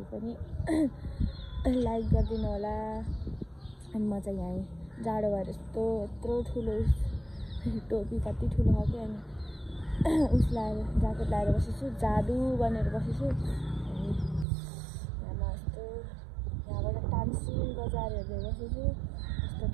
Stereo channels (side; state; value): left; drops out; at 14.5 s